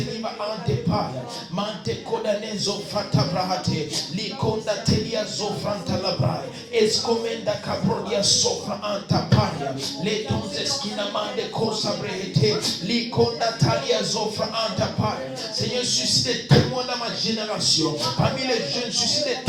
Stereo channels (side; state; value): both; identical; correlation 1.00